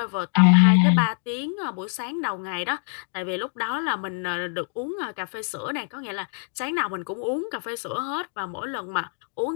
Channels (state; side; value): silent; right; digital silence